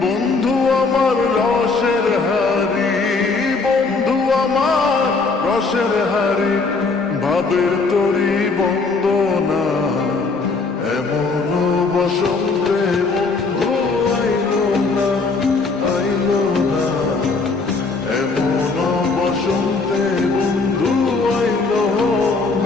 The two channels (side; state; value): right; quieter; 4.1 dB